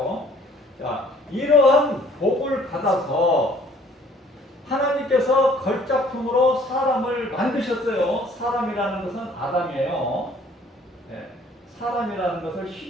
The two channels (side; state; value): both; normal; correlation 0.57